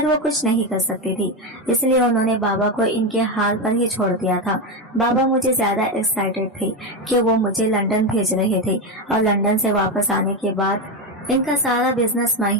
वो कुछ नहीं कर सकती थी, इसलिए उन्होंने बाबा को इनके हाल पर ही छोड़ दिया था। बाबा मुझे ज्यादा एक्साइटेड थे कि वो मुझे लंदन भेज रहे थे और लंदन से वापस आने के बाद इनका सारा बिजनेस मैं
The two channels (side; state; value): both; normal; correlation 0.12